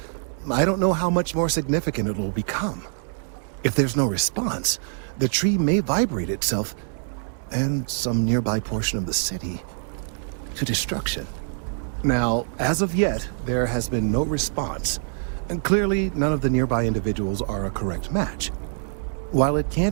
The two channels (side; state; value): left; silent; 62 dB below the other